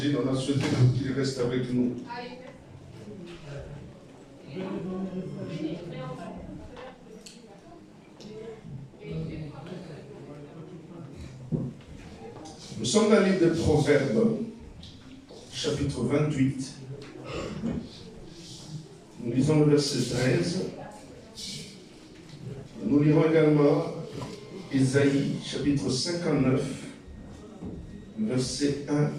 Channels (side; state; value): both; identical; correlation 1.00